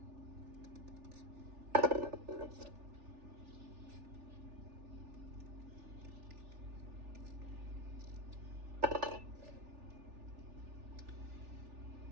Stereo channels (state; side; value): late; left; 3.4 ms